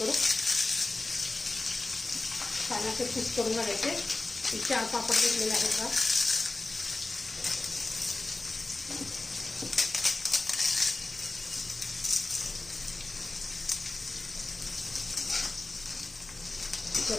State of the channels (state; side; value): quieter; right; 3.2 dB